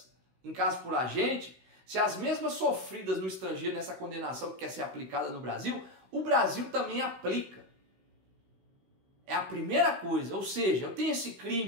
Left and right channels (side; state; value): left; late; 16 ms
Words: em caso por agente, se as mesmas sofridas no estrangeiro nessa condenação que quer ser aplicada no Brasil, o Brasil também aplica. É a primeira coisa, ou seja, eu tenho esse